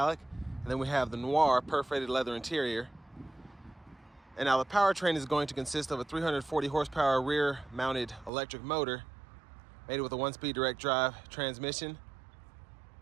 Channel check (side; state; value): left; drops out; at 8.3 s